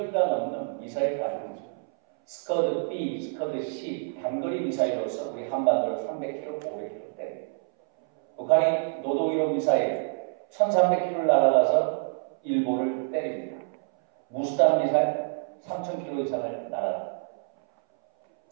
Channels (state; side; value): silent; left; 60 dB below the other